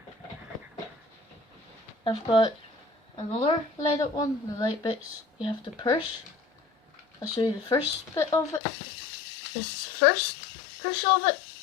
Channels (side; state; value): right; drops out; at 8.6 s